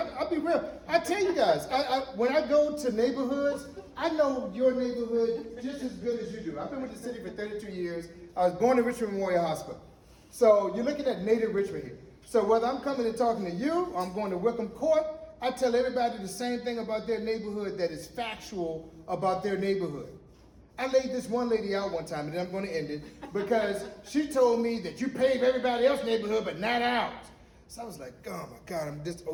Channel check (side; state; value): both; identical; correlation 1.00